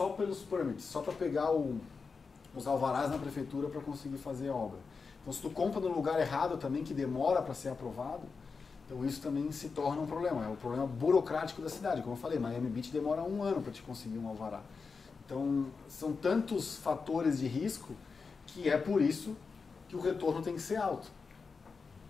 pelos permits, só para pegar os alvarás na prefeitura para conseguir fazer a obra. Então se tu compra no lugar errado também, que demora para ser aprovado, então isso também se torna um problema. É um problema burocrático da cidade. Como eu falei, Miami Beach demora 1 ano para te conseguir um alvará. Então são tantos fatores de risco que é por isso que o retorno tem que ser alto.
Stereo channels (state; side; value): quieter; right; 4.9 dB